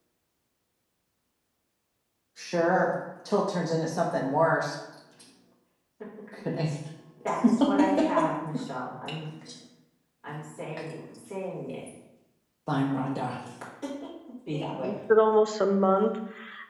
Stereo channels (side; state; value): both; identical; correlation 1.00